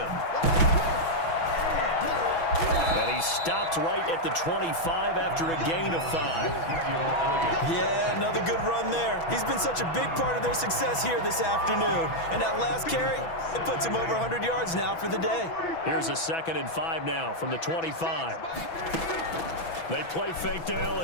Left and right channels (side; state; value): right; late; 6.1 ms